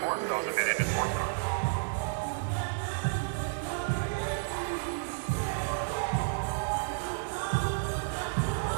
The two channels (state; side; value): silent; left; digital silence